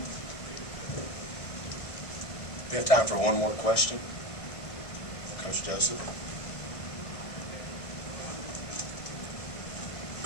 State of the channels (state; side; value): late; right; 1.7 ms